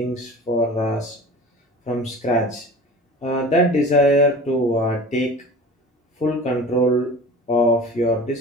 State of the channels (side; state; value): both; normal; correlation 0.39